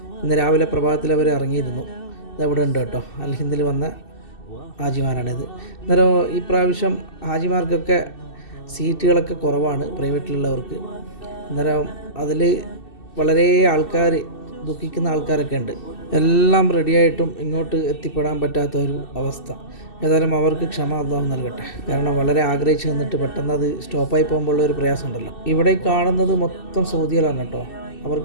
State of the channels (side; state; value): right; late; 2.7 ms